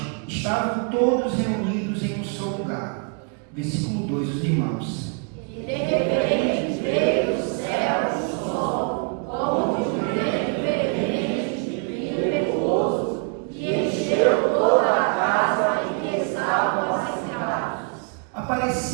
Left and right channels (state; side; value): quieter; left; 39.1 dB